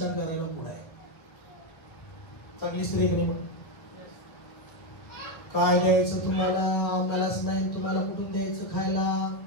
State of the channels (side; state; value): right; late; 1.6 ms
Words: करायला पुढे आहे. चांगली स्त्री की नाही? काय द्यायचं तुम्हाला? आम्हालाच नाही, तुम्हाला कुठून द्यायचं खायला?